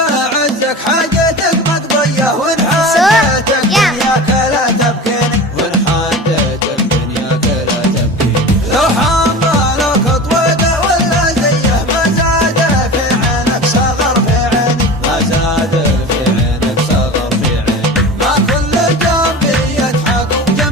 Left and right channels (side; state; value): both; normal; correlation 0.33